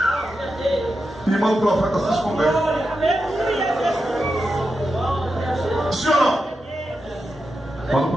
e manda o profeta se esconder. Sim ou não? Manda o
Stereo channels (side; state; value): both; normal; correlation 0.89